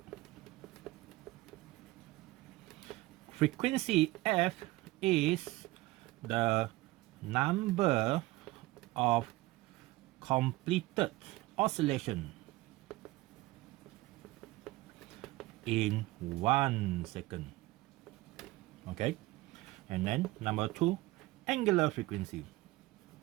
Frequency f is the number of completed oscillation in 1 second. Okay, and then number 2, angular frequency.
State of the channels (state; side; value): quieter; left; 19.4 dB